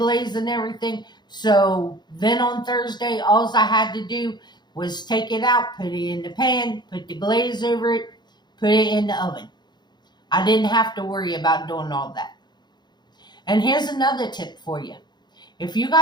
and everything. So then on Thursday, all I had to do was take it out, put it in the pan, put the glaze over it, put it in the oven. I didn't have to worry about doing all that. And here's another tip for you. If you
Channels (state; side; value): late; right; 0.21 ms